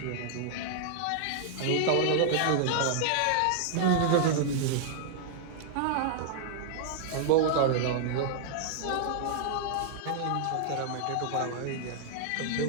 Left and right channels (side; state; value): both; different; correlation -0.01